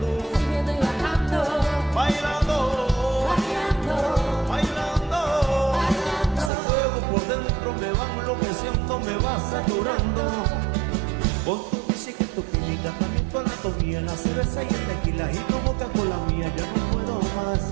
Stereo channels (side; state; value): left; drops out; at 6.5 s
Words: subiendo y bajando, Bailando, bailando, bailando, ese fuego por dentro me va enloqueciendo, me va saturando. Con tu física y tu química, también tu anatomía, la cerveza y el tequila y tu boca con la mía, ya no puedo más,